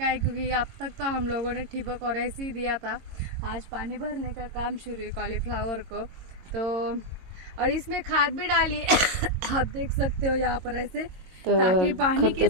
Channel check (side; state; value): left; late; 22 ms